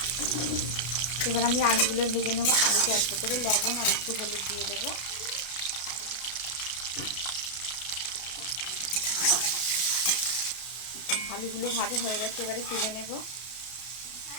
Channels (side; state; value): right; late; 33 ms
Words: এবার আমি আলুগুলো ভেজে নেব। আলুতে অল্প করে লবণ আর একটু হলুদ দিয়ে দেবো। আলুগুলো ভাজা হয়ে গেছে, এবারে তুলে নেব।